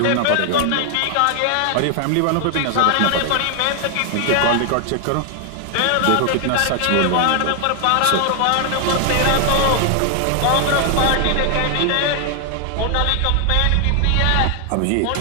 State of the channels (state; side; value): different; both; correlation 0.00